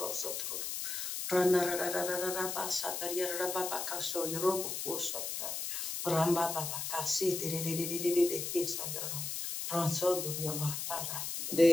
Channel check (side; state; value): left; noise; hiss, 3 dB below the sound